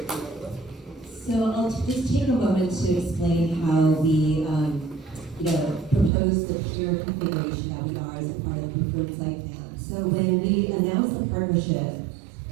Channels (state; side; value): drops out; left; at 6.1 s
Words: So I'll just take a moment to explain how we, propose the pier configuration that we are as a part of the preferred site plan. So when we announced the partnership